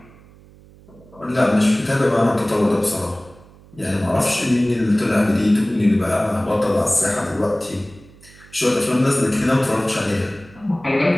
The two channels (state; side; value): noise; right; hum, 24 dB below the sound